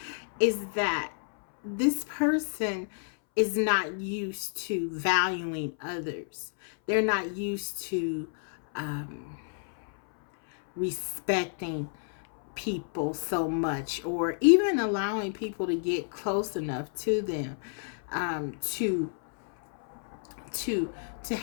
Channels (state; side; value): silent; right; 58 dB below the other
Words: is that this person is not used to valuing others. They're not used to respecting people so much, or even allowing people to get close enough to them to